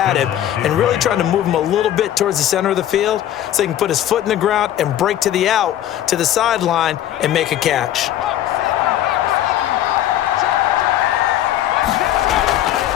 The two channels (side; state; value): right; quieter; 12.0 dB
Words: him and really trying to move him a little bit towards the center of the field so he can put his foot in the ground and break to the out, to the sideline, and make a catch.